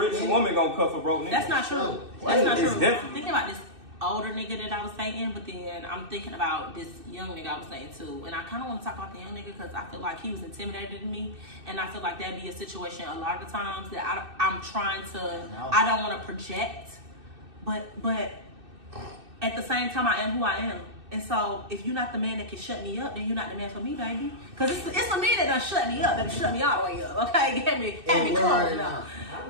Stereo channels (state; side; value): late; left; 2.6 ms